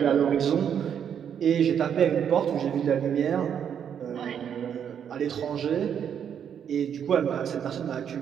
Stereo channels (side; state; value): left; quieter; 8.4 dB